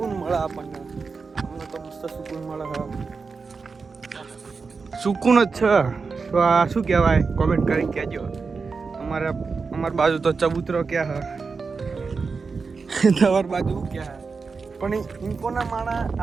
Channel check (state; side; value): quieter; left; 4.8 dB